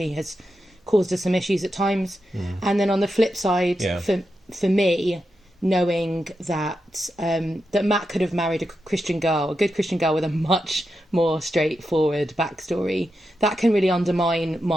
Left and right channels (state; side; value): normal; both; correlation 0.88